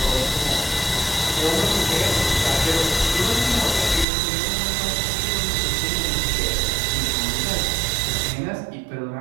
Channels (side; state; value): left; drops out; at 4.0 s